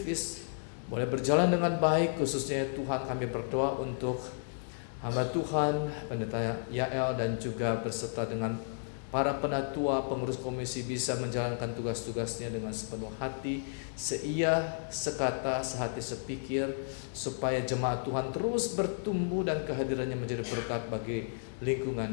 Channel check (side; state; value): right; silent; 56 dB below the other